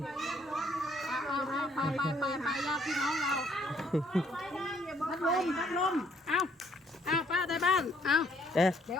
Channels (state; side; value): normal; both; correlation 0.66